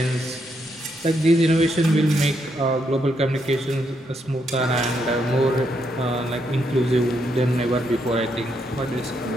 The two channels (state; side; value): normal; both; correlation 0.78